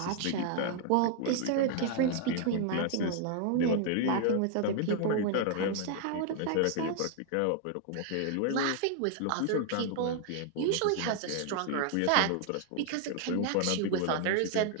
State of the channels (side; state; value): both; different; correlation 0.00